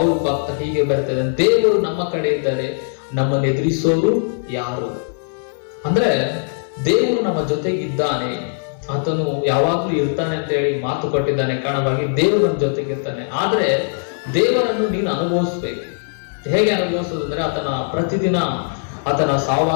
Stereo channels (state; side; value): silent; right; digital silence